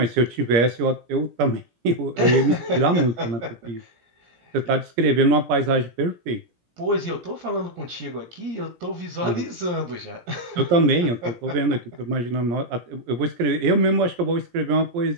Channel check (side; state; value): left; late; 17 ms